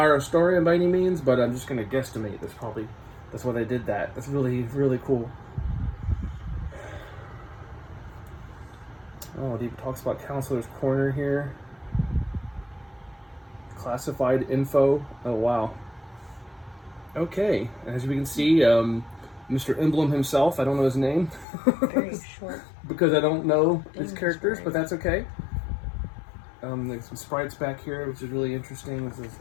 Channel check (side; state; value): right; drops out; at 21.5 s